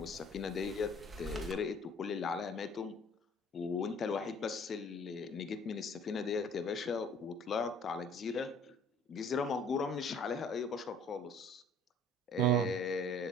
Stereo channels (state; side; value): normal; both; correlation 0.53